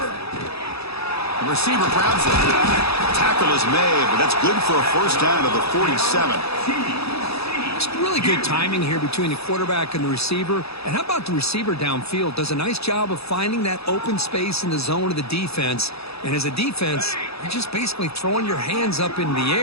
The receiver grabs it. Tackle is made, but that's good for a first down to the 47. It's really good timing here between the quarterback and the receiver. And how about the receiver downfield? Does a nice job of finding that open space in the zone of the defense. And as a defense, you're just basically throwing your hands up in the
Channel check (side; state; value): right; late; 0.78 ms